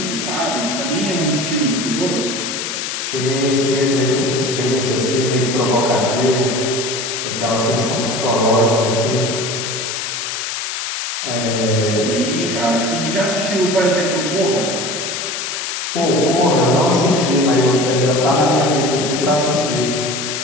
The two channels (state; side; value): noise; left; hiss, 4 dB below the sound